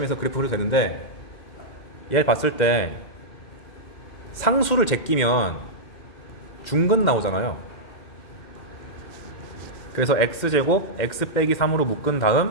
해서 그래프 그려도 되는데, 얘를 봤을 때 상수를 제끼면 중근 나오잖아요. 그래서 x제곱 x 빼기 3으로 묶은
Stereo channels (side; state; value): right; late; 2.0 ms